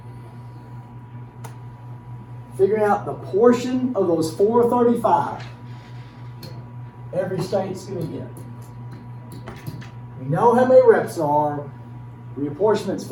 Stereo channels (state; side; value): identical; both; correlation 1.00